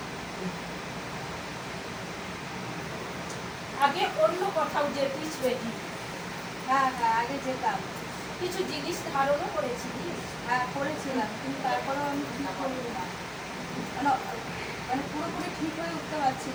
আগে অন্য কোথাও যেতিস বেটি? হ্যাঁ হ্যাঁ, আগে যেতাম। কিছু জিনিস ধারণও করেছিলিস? হ্যাঁ করেছিলাম, কিন্তু তারপরেও আমি ঠিক করি না, মানে মানে পুরোপুরি ঠিক হয়ে উঠতে পারছি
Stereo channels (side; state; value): both; identical; correlation 1.00